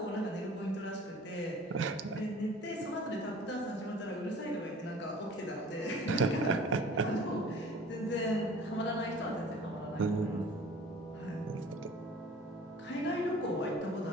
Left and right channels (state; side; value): normal; both; correlation 0.47